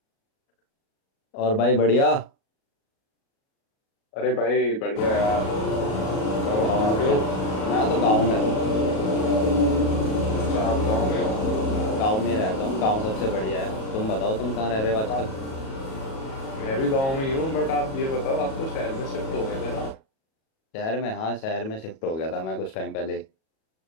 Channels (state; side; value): late; right; 37 ms